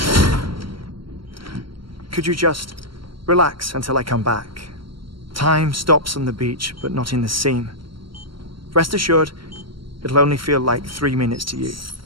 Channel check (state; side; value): late; left; 0.73 ms